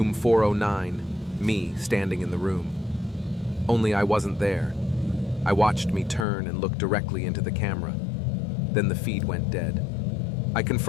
409, me standing in the room. Only I wasn't there. I watched me turn and look directly into the camera. Then the feed went dead. I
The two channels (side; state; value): right; drops out; at 6.2 s